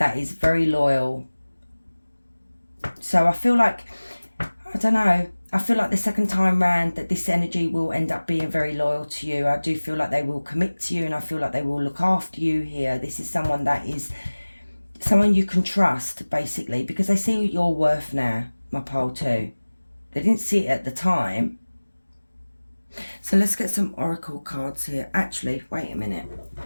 is very loyal. So I feel like, I don't know, I feel like the second time round that this energy will end up being very loyal to you. I do feel like they will commit to you, and I feel like they will look after you here. This is someone that is someone you can trust, basically, because they see your worth now, my pole too. They didn't see it at the time. So let's get some oracle cards here. Actually, wait a minute.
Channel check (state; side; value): inverted; both; correlation -1.00